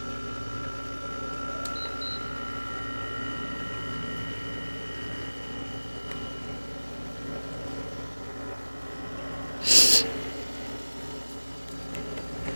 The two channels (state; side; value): inverted; both; correlation -1.00